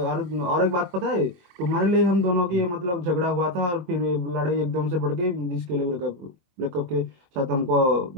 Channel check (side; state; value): left; late; 22 ms